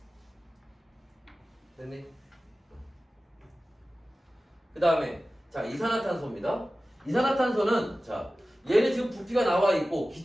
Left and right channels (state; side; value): normal; both; correlation 0.96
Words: 됐니? 그 다음에 자, 이산화탄소입니다. 이산화탄소는 자, 얘는 지금 부피가 나와 있고